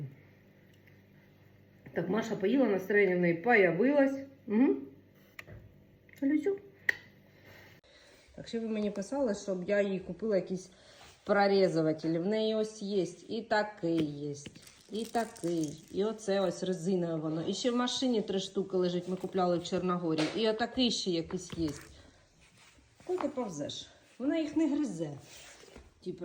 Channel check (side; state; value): both; identical; correlation 1.00